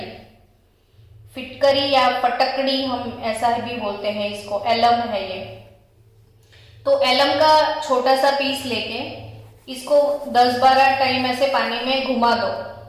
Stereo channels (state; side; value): identical; both; correlation 1.00